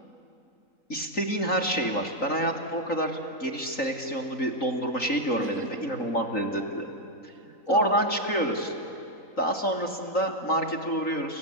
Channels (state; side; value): late; right; 3.8 ms